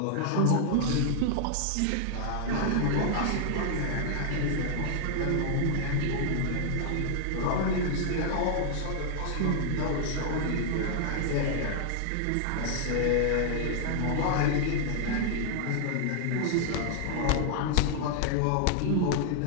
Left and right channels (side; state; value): both; different; correlation 0.00